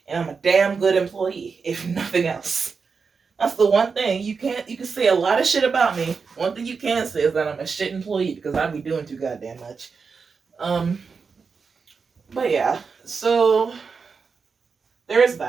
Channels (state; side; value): quieter; left; 5.2 dB